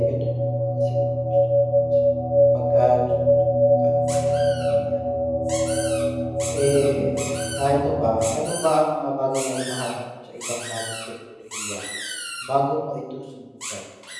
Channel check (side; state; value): both; identical; correlation 1.00